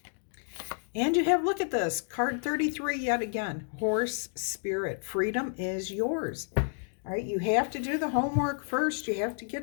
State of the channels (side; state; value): right; silent; 58 dB below the other